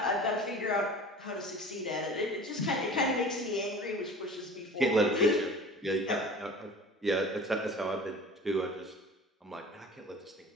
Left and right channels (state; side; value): normal; both; correlation 0.41